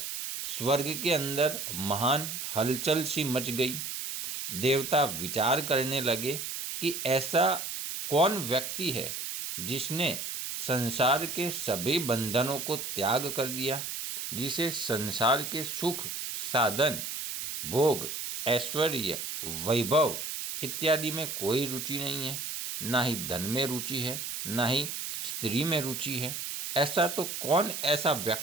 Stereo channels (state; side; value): noise; right; hiss, 5 dB below the sound